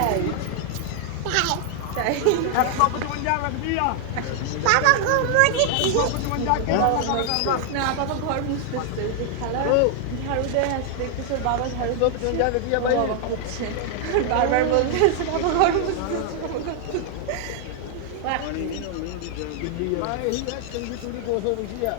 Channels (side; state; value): both; different; correlation 0.00